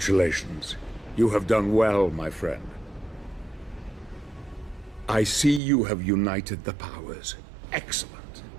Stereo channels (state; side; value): drops out; left; at 5.6 s